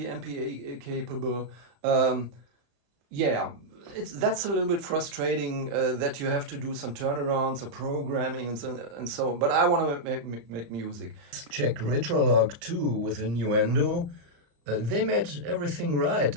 MPE capable. Yeah, that's a little bit frustrating that you have to do some turnarounds or programming and so. But I want to make music. Check Retrolog 2 with a Nuendo. They made everything right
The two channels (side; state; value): left; late; 35 ms